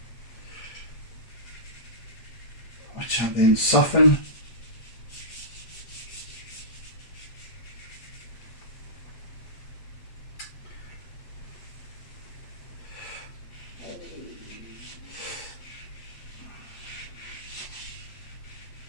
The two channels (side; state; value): right; late; 8.2 ms